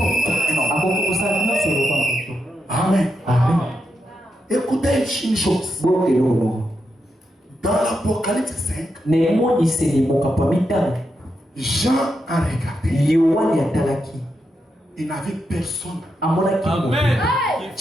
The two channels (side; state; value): both; normal; correlation 0.85